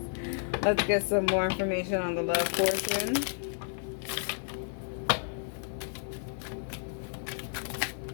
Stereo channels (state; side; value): silent; right; digital silence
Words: Let's get some more information on the love portion.